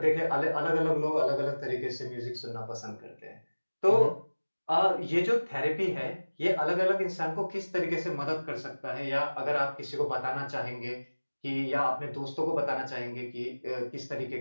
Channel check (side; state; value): both; inverted; correlation -1.00